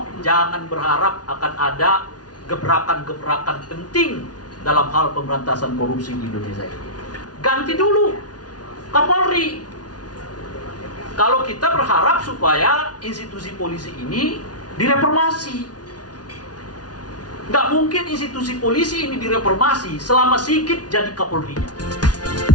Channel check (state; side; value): late; right; 0.69 ms